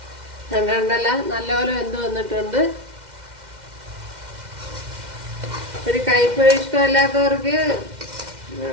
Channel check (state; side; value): late; left; 2.1 ms